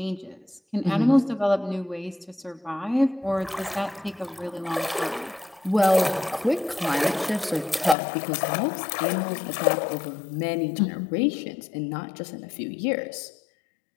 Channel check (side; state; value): right; drops out; at 8.0 s